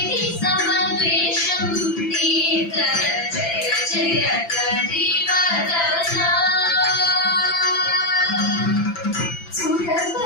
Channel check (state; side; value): late; right; 5.9 ms